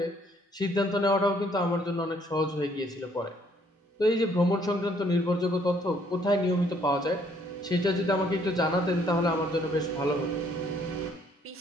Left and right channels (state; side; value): normal; both; correlation 0.65